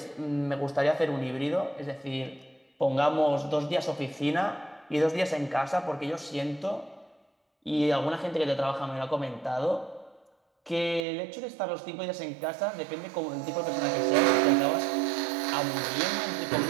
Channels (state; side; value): drops out; left; at 11.0 s